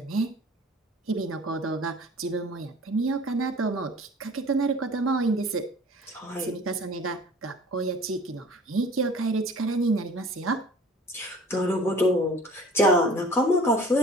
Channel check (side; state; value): both; normal; correlation 0.47